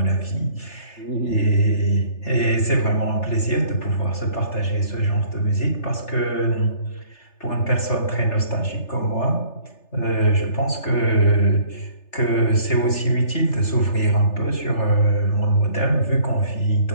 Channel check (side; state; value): right; late; 3.3 ms